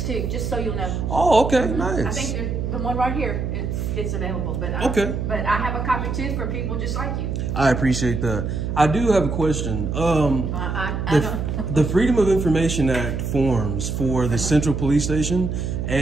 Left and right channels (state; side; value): noise; right; hum, 2 dB below the sound